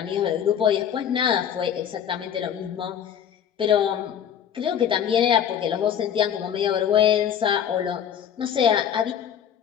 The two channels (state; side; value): quieter; right; 8.9 dB